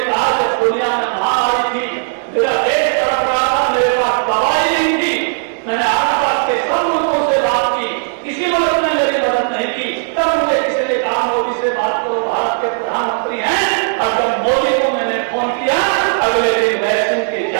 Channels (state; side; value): silent; left; 69 dB below the other